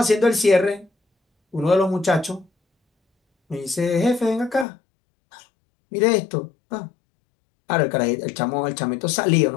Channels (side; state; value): right; drops out; at 4.7 s